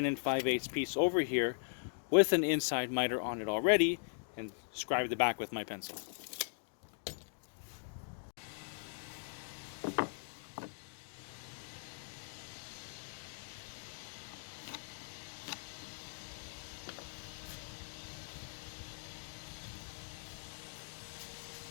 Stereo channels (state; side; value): silent; right; digital silence